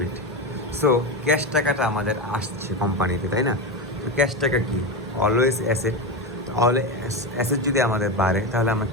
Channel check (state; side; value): normal; both; correlation 0.17